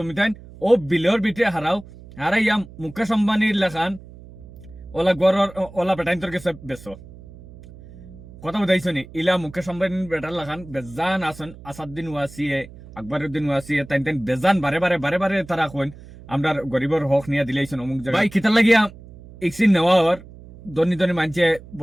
তাই ও বিলর বিটে হারাইয়া মুকেশ আম্বানির লেখান ওলা গড়র ওলা বেটাইন তোর কাছে বেসো। কথা বুঝাইছো নি? ইলা মুকেশ আম্বানির বেটার লাখান বেজান আসন, আসাদুদ্দিন ওয়াসিয়ে, আকবরউদ্দিন ওয়াসিয়ে, তাই তাই বেজান বারে বারে বারে বারে তারা কইন আমরা গরিবর হক নিয়ে দিলাইছেন অমুক জায়গায়। ভাই কিতা লাগিয়া ইক্সিন নেওয়া হওয়ার ধনী ধনী মানছে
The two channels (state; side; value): noise; right; hum, 19 dB below the sound